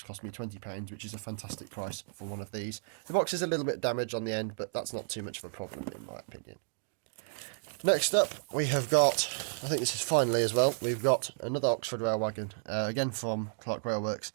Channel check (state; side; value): silent; left; digital silence